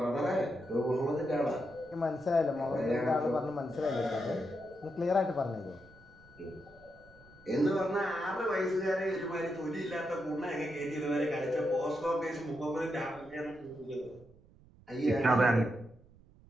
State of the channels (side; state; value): right; noise; rumble, 25 dB below the sound